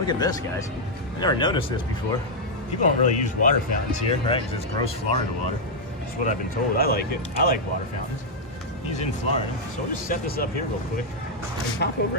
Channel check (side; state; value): both; normal; correlation -0.03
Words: at this, guys. I never noticed this before. People don't really use water fountains here, right? Because it's gross Florida water. That's what I've been told. I like it. I like water fountains. He's in Florida. So we'll just set this up here real quick and pop